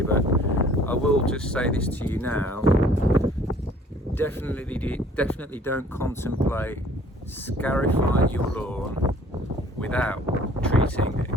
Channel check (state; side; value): normal; both; correlation 0.55